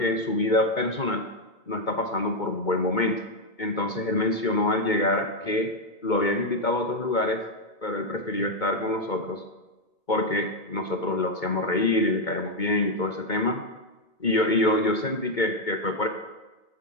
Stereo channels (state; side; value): late; right; 2.2 ms